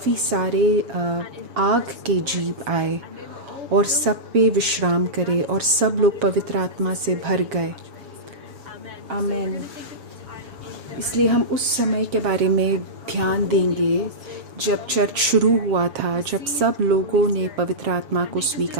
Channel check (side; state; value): left; late; 7.1 ms